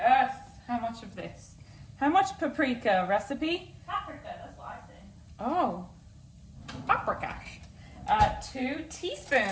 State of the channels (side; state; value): both; identical; correlation 1.00